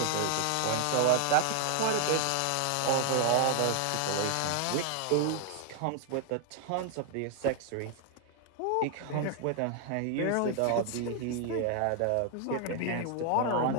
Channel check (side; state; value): both; different; correlation 0.00